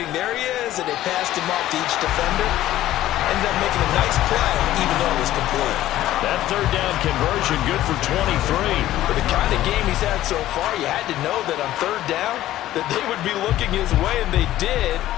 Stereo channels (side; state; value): right; quieter; 14.1 dB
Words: There he is, and they passed him off to each defender. Ended up making a nice play, even though it was complete. That 3rd down conversion good for 23. For the kind of game he's had so far, you had to know that on 3rd down that they would be looking his way, and they did,